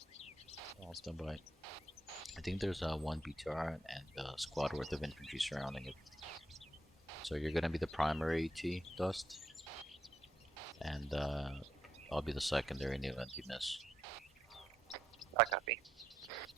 I'll stand by. I think there's one BTR and a squad worth of infantry surrounding it. So you're gonna be the primary AT, Dust. And I'll be the secondary in the event you miss. I copy.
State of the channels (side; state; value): both; normal; correlation 0.78